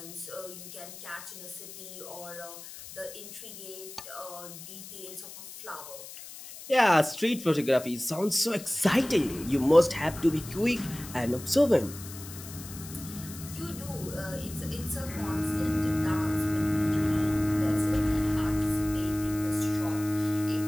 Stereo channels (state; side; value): noise; left; hiss, 14 dB below the sound